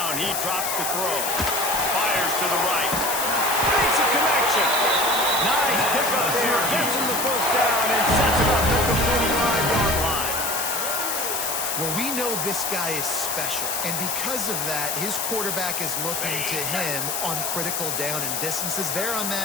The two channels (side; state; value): left; noise; hiss, 1 dB below the sound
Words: he drops to throw. Fires to the right. Makes a connection. Nice pick up there. Gets him the first down and sets it up at the 45-yard line. Well, we know this guy is special, and because of that, his quarterback is looking to him on critical down and distances. There on